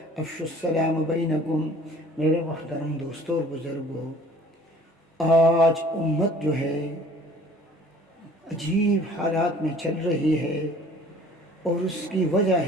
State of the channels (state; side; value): normal; both; correlation 0.50